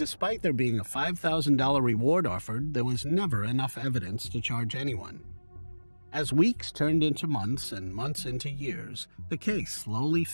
despite there being a $5,000 reward offered, there was never enough evidence to charge anyone. As weeks turned into months and months into years, the case slowly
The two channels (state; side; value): inverted; both; correlation -1.00